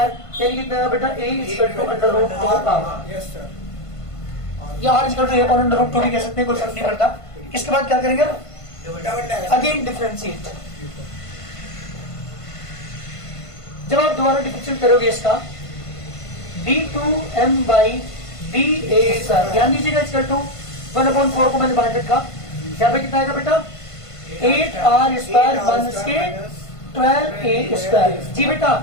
यानी कितना बेटा a इक्वल टू √2r, या r equal to a upon √2 भी कह सकते हैं, कोई फर्क नहीं पड़ता। इसके बाद क्या करेंगे? Again differentiate. जब आप दोबारा डिफरेंशिएट करोगे इसका d2m बाई da स्क्वायर, ध्यान दीजिएगा इक्वल टू 1/4 को मैंने बाहर रखा, यहाँ पे कितना आएगा बेटा? 8r स्क्वायर माइनस के 12a स्क्वायर। जी बेटा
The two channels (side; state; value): right; late; 1.5 ms